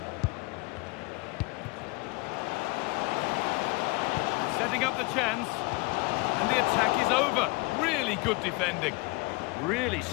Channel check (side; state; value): right; quieter; 26.3 dB